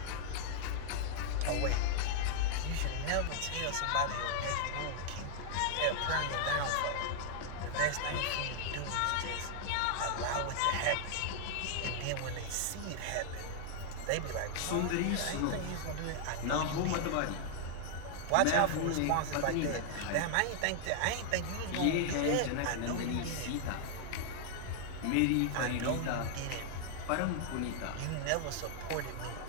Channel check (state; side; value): different; both; correlation -0.01